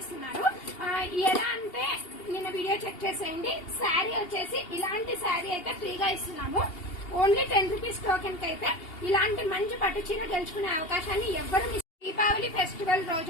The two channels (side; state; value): right; late; 2.8 ms